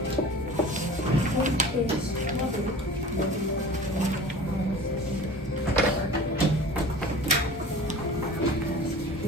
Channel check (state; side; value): normal; both; correlation 0.40